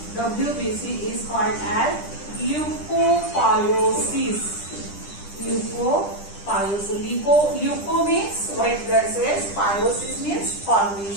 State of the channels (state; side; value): late; right; 10 ms